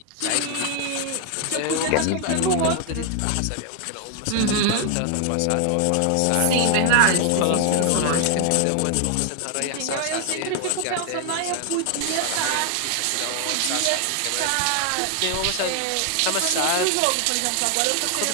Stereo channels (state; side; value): different; both; correlation 0.00